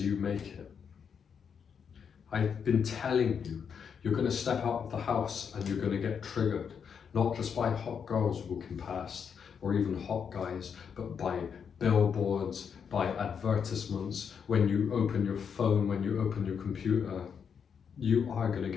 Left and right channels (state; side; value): quieter; right; 7.0 dB